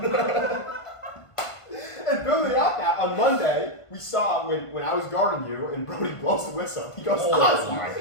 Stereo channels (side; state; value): right; late; 1.5 ms